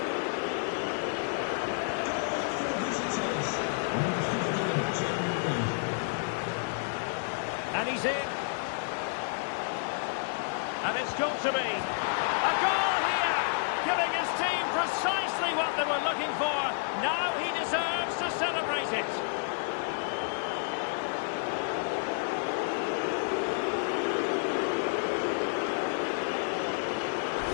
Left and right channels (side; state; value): right; silent; 58 dB below the other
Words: And he's in. And it's got to be a goal here, giving his team precisely what they were looking for. Now he deserves to celebrate it.